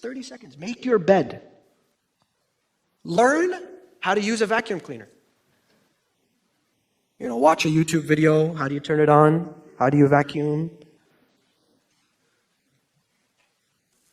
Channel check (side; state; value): both; identical; correlation 1.00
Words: seconds. Make your bed. Learn how to use a vacuum cleaner. Watch a YouTube video. How do you turn it on? How do you vacuum?